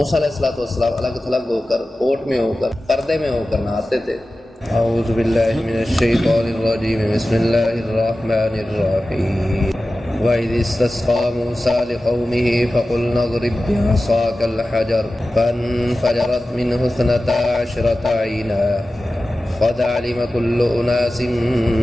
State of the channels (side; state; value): both; normal; correlation 0.95